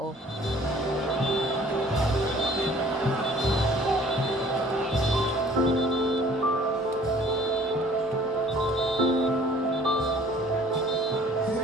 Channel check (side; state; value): both; normal; correlation 0.53